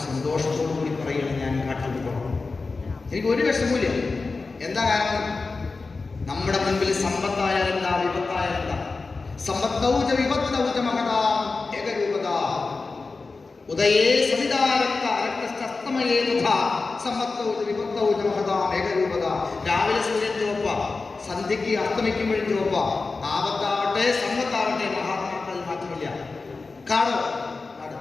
സന്തോഷത്തോടു കൂടി പറയുകയാണ്, ഞാൻ കാട്ടിൽ പോകണം, എനിക്ക് ഒരു വിഷമമില്ല. എന്താ കാരണം? നമ്മുടെ മുൻപിൽ സമ്പത്തായാലും എന്താ, വിപത്തായാലും എന്താ? സമ്പത്തൗച വിപത്തൗച മഹതാ ഏകരൂപത ഉദയേ സവിതാരക്ത രക്തസ്തമയേ തഥാ സമ്പത്തൗച വിപത്തൗച മഹതാ ഏകരൂപത. രാവിലെ സൂര്യൻ ചുവപ്പ, സന്ധ്യയ്ക്ക് അസ്തമിക്കുമ്പോഴും ചുവപ്പ. ആപത്താവട്ടെ സമ്പത്താവട്ടെ, മഹാത്മാക്കളിൽ മാറ്റമില്ല. കാടോ നാട്,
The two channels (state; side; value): quieter; right; 4.0 dB